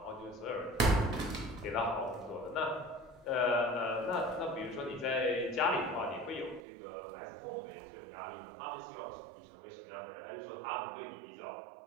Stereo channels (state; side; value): drops out; left; at 6.6 s